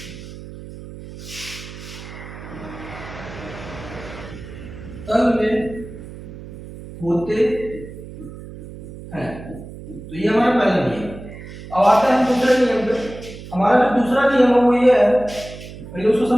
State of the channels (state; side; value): noise; right; hum, 14 dB below the sound